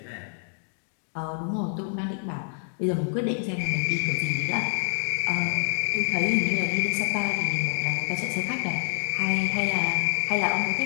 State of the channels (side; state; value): right; silent; 60 dB below the other